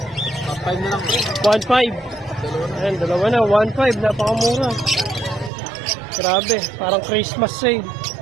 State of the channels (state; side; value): drops out; left; at 5.5 s